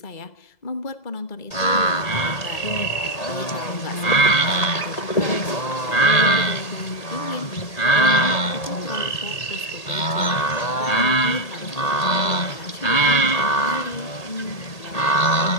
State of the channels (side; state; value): right; late; 1.8 ms